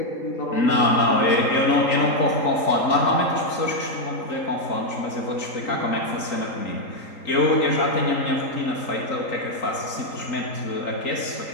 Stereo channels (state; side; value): late; right; 3.9 ms